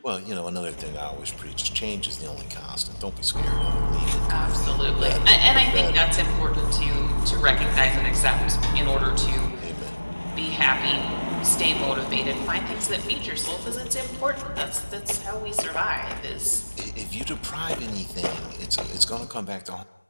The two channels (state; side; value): inverted; both; correlation -1.00